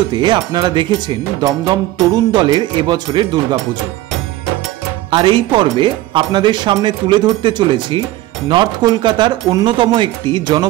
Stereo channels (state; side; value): quieter; left; 16.1 dB